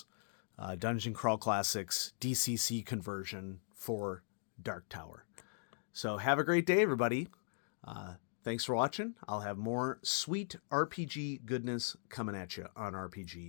Dungeon Crawl Classics DCC Conversion for Dark Tower. So have a great day, everybody. Thanks for watching. I'll have more sweet RPG goodness coming at you on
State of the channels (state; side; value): silent; right; digital silence